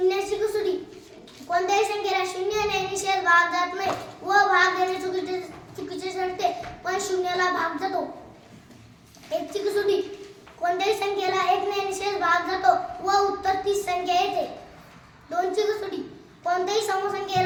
कसोटी. कोणत्याही संख्येला शून्याने निषेध भाग जात नाही व भाग देणे चुकीचे ठरते, पण शून्याला भाग जातो. 1 ची कसोटी. कोणत्याही संख्येला 1 ने निषेध भाग जातो व उत्तर 30 संख्या येते. 2 ची कसोटी. कोणत्याही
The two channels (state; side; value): identical; both; correlation 1.00